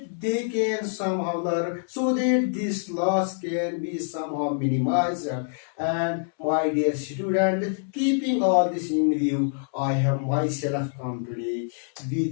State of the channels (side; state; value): right; silent; 61 dB below the other